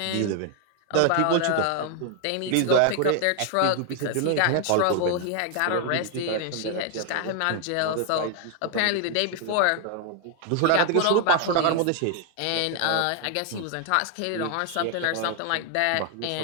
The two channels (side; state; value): both; different; correlation 0.00